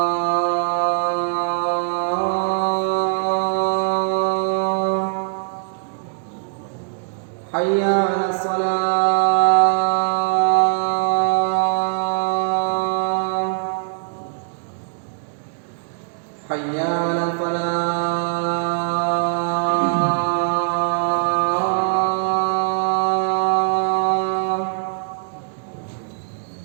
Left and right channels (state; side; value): silent; left; digital silence